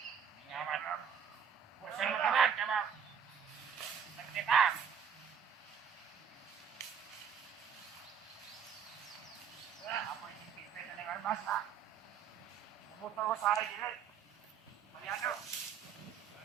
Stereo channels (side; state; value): left; quieter; 7.3 dB